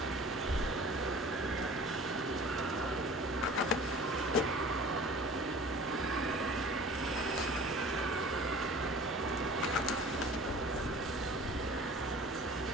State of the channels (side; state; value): both; normal; correlation 0.44